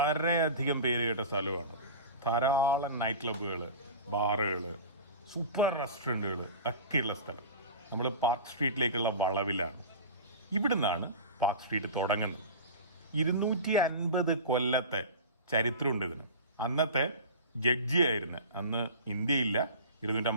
പേര് കേട്ട സ്ഥലമാണ്. ധാരാളം നൈറ്റ് ക്ലബ്ബുകൾ, ബാറുകൾ, സൂപ്പർ റെസ്റ്റോറൻറ്റുകൾ ഒക്കെയുള്ള സ്ഥലം. നമ്മൾ പാർക്ക് സ്ട്രീറ്റിലേക്കുള്ള വളവിലാണ്. ഇവിടുന്നാണ് പാർക്ക് സ്ട്രീറ്റ് തുടങ്ങുന്നത്. 250 കൊല്ലത്തെ ചരിത്രമുണ്ട് ഇതിന്. അന്നത്തെ ജഡ്ജിയായിരുന്നു, അന്ന് ഇന്ത്യയില്ല,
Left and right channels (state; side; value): inverted; both; correlation -0.32